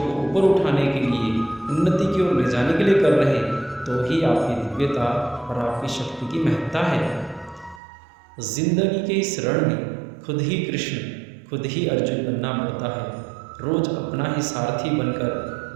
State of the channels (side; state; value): left; drops out; at 7.8 s